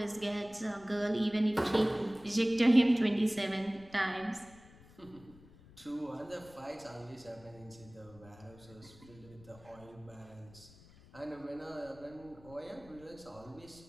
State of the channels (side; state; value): left; noise; rumble, 22 dB below the sound